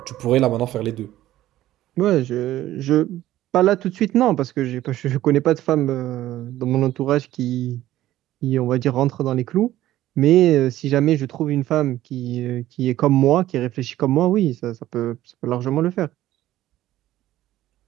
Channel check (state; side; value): quieter; left; 14.3 dB